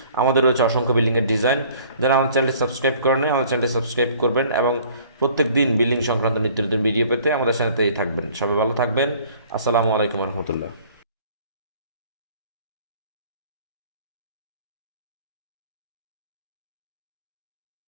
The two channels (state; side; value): inverted; both; correlation -0.53